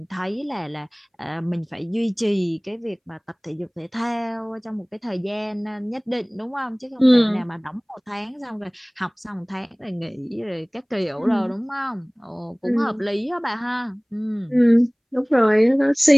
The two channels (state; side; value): identical; both; correlation 1.00